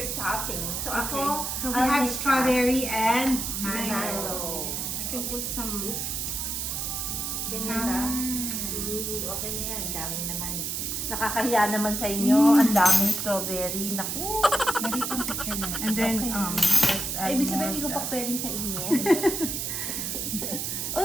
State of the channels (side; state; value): right; noise; hiss, 2 dB below the sound